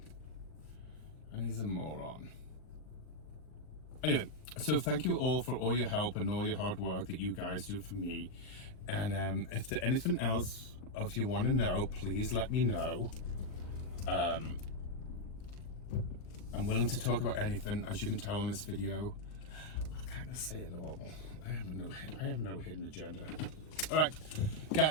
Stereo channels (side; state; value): right; late; 39 ms